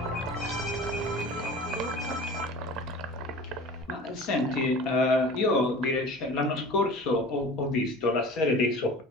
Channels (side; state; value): both; normal; correlation 0.39